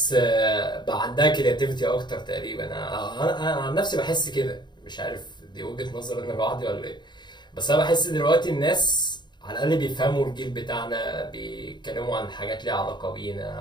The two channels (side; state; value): right; late; 0.21 ms